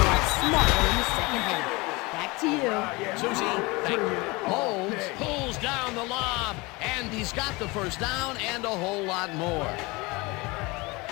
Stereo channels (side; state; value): right; quieter; 24.6 dB